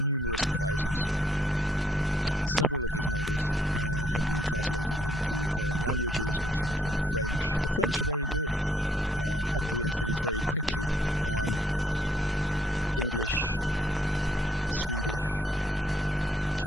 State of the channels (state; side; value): normal; both; correlation 0.68